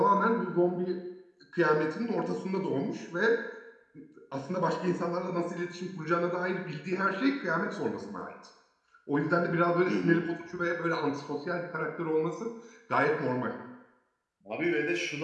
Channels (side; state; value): both; identical; correlation 1.00